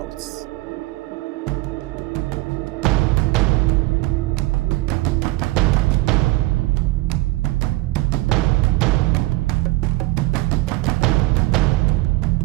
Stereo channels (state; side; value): quieter; left; 20.5 dB